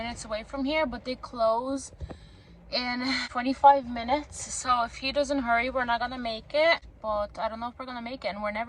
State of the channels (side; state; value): both; identical; correlation 1.00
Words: away from here, but they close in 25 minutes. So if he doesn't hurry, we're not gonna make it. But I don't know if we're gonna make it, and we're